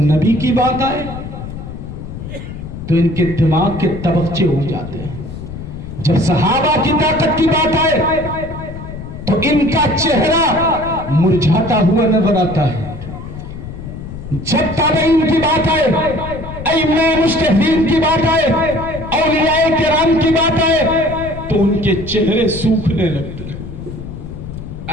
नबी की बात आए तो इनके दिमाग के तबक्चे उड़ जाते हैं। जब सहाबा की ताकत की बात आए तो इनका चेहरा मुरझाता हुआ नजर आता है। जब ताबईन की बात आए, अइम्मा मुज्तहिदीन की बात आए, औलियाए किराम की बात आए तो उनके चेहरे सूखने लगते हैं।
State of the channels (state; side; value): noise; left; rumble, 10 dB below the sound